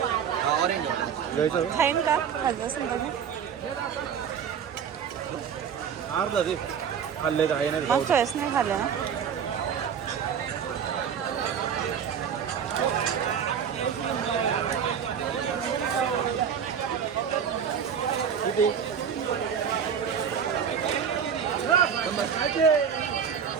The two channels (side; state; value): left; quieter; 7.6 dB